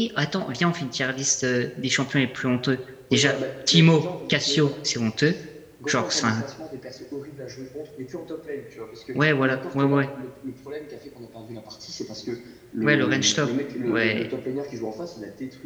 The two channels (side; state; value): both; identical; correlation 1.00